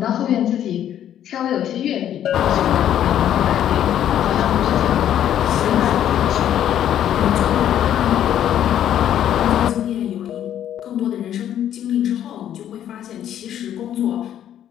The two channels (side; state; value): right; quieter; 10.7 dB